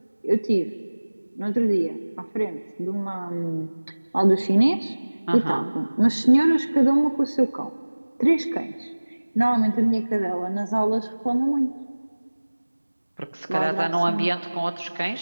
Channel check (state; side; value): inverted; both; correlation -1.00